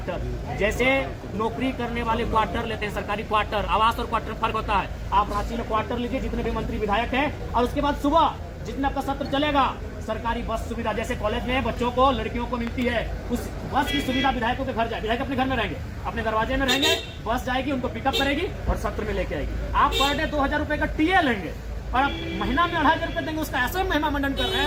जैसे नौकरी करने वाले क्वार्टर लेते हैं, सरकारी क्वार्टर, आवास और क्वार्टर फर्क होता है। आप रांची में क्वार्टर लीजिए, जितने भी मंत्री विधायक हैं, और उसके बाद सुबह जितना आपका सत्र चलेगा, सरकारी बस सुविधा जैसे कॉलेज में बच्चों को, लड़कियों को मिलती है, उस बस की सुविधा विधायकों के घर जाए। विधायक अपने घर में रहेंगे, अपने दरवाजे में रहेंगे, बस जाएगी, उनको पिकअप करेगी और सत्र में लेके आएगी। आप पर डे 2,000 रुपए का टीए लेंगे और आप महीना में 2,500 रुपए देंगे, उसका ऐसे महिमा मंडन कर रहे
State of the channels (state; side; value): identical; both; correlation 1.00